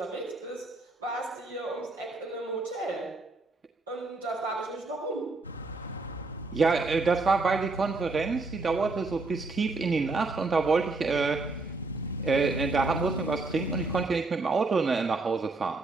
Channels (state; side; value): quieter; left; 3.5 dB